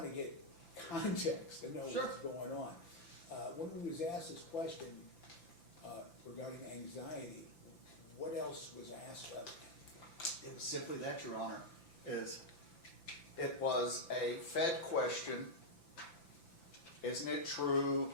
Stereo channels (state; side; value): late; right; 5.9 ms